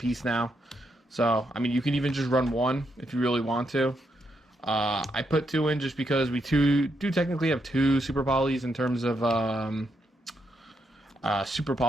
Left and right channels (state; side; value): normal; both; correlation 0.80